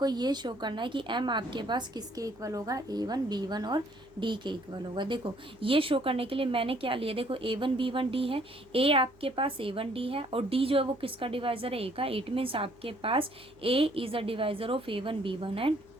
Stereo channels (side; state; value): right; noise; hum, 28 dB below the sound